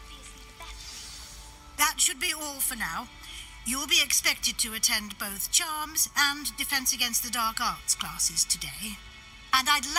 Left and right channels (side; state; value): both; identical; correlation 1.00